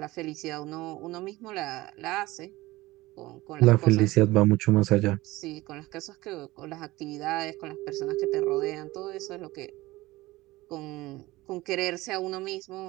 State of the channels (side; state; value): left; quieter; 19.2 dB